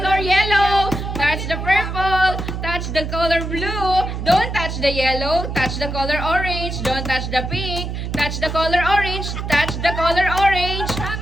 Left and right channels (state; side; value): noise; right; hum, 5 dB below the sound